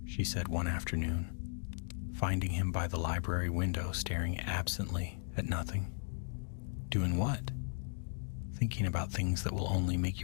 she said one afternoon, finding him by the library window staring absently at nothing. "Doing what?" "Thinking about things that will only make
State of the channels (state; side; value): silent; right; digital silence